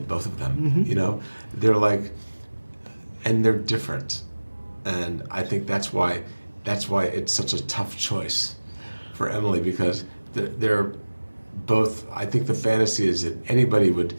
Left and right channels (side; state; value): both; inverted; correlation -1.00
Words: both of them. They're like, and they're different, and I think that's why it's such a tough choice for Emily, because they're both. I think the fantasy is that anybody would.